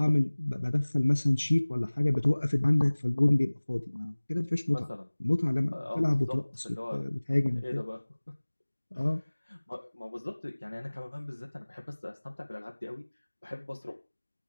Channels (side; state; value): both; inverted; correlation -1.00